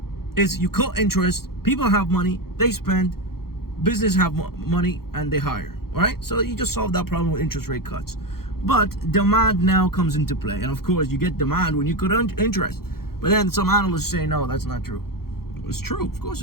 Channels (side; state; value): right; late; 0.94 ms